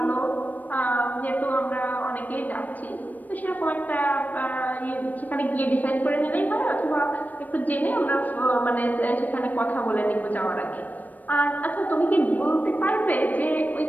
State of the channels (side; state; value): right; late; 0.081 ms